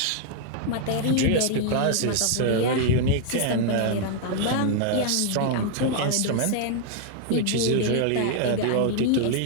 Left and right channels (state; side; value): different; both; correlation 0.00